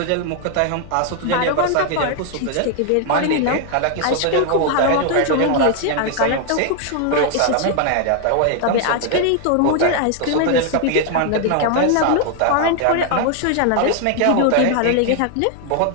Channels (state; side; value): different; both; correlation 0.00